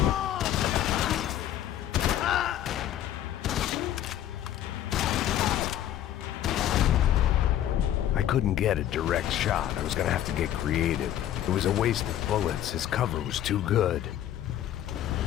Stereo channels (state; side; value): quieter; right; 11.7 dB